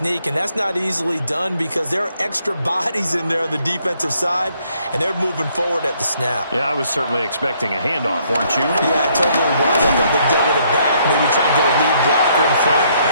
and that's not easily done because there are extra bodies in there on the defensive side, and they're moving forward at the snap. Yeah, I was certainly expecting a handoff, weren't you? Yeah, I totally was. I thought they'd go with it back, maybe try and get a lead blocker in front.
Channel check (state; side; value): inverted; both; correlation -0.68